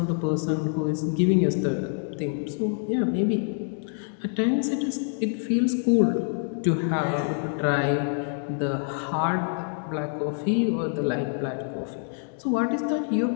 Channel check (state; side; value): silent; right; 61 dB below the other